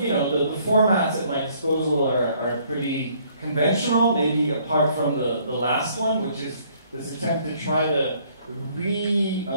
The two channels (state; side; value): inverted; both; correlation -0.63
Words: formats at my disposal are pretty conventional, maybe apart from the last one, which is this attempt to try to